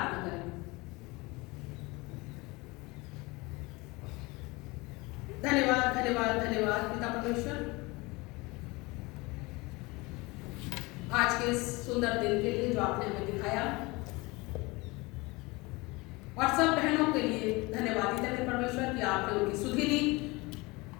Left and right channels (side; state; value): right; quieter; 24.1 dB